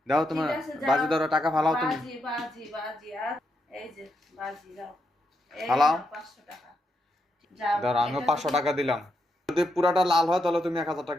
দাও ঠিক তোমার। আছে, যাও। বাজি ধরো, টাকা ফালাও তুমি। বাজি বাজি বাজি আর এই যে বাজি দাও। এই ফালাও। নাও 500 টাকা। যাও। ধরো আমিও এটা পাঁচশো যদি টাকা দিলাম। যদি পুরাটা লাল হয় তাহলে তুমি 1000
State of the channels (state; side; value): normal; both; correlation 0.82